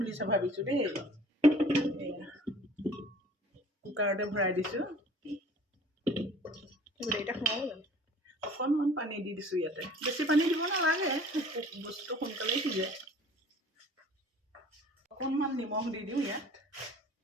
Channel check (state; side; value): normal; both; correlation 0.49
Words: ভাবিছোঁ দেই কুকাৰতে ভৰাই দিছোঁ গোটেইকেইটা সোমাব জানো অকণমান পানী দি দিছোঁ ইয়াতে বেছি পানী দিব নালাগে বস্তুটো সোনকালেই সিজে অকণমান নিমখ দি দিওঁ ইয়াত